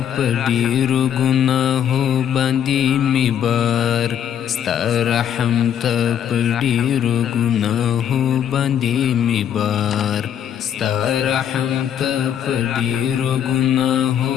په ډېرو ګناهو باندې مې بار ستا رحم ته په ډېرو ګناهو باندې مې بار ستا رحم ته په ډېرو ګناهو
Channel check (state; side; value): quieter; right; 9.4 dB